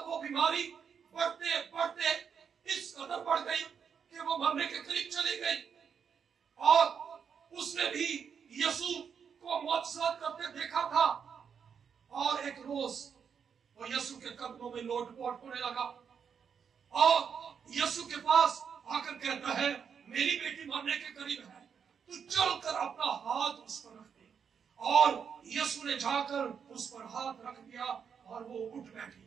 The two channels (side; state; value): left; quieter; 7.0 dB